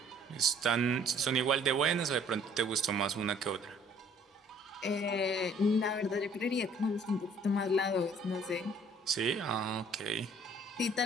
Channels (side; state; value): both; normal; correlation 0.58